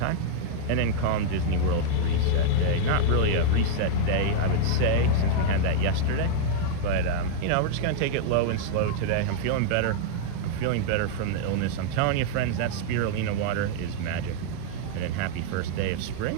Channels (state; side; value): different; both; correlation -0.01